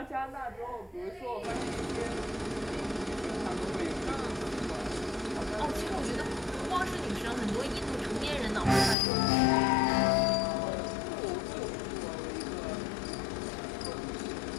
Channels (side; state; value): right; drops out; at 9.0 s